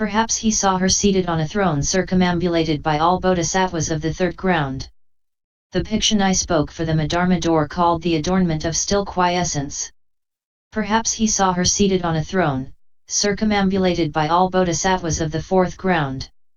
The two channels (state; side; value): identical; both; correlation 1.00